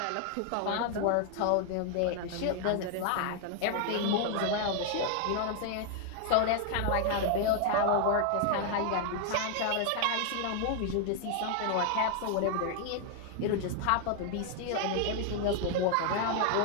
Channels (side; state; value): both; different; correlation 0.00